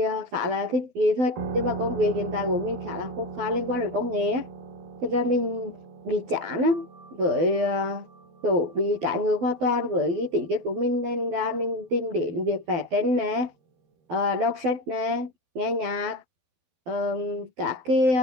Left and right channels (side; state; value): left; late; 12 ms